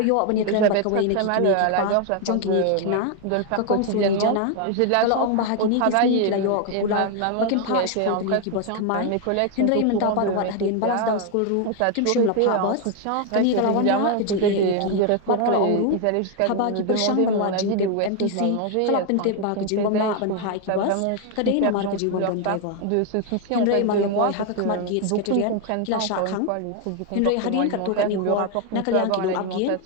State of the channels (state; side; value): different; both; correlation 0.01